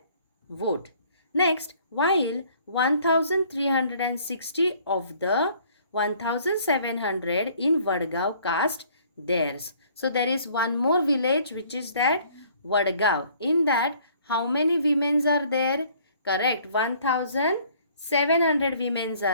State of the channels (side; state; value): both; inverted; correlation -0.58